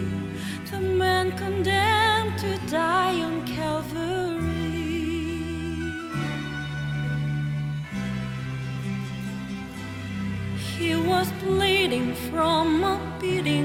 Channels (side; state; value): both; identical; correlation 1.00